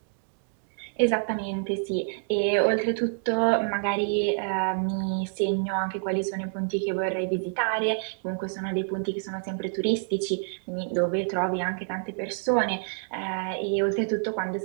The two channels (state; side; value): silent; left; digital silence